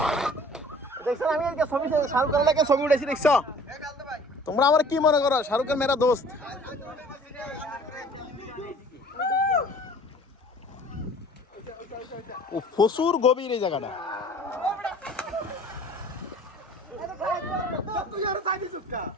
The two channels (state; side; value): normal; both; correlation 0.49